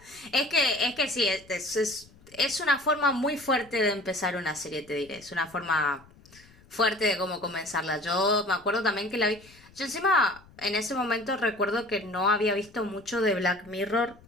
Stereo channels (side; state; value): left; noise; rumble, 25 dB below the sound